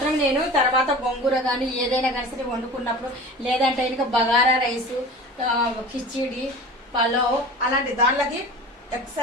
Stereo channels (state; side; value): normal; both; correlation 0.37